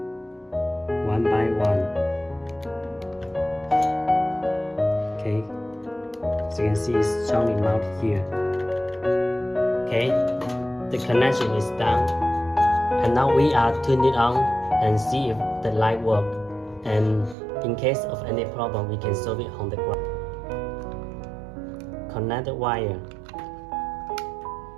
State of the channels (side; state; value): left; drops out; at 17.4 s